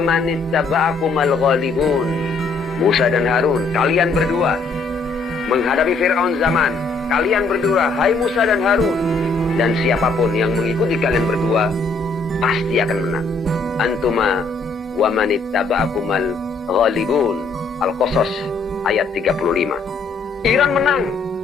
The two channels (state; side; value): quieter; right; 3.9 dB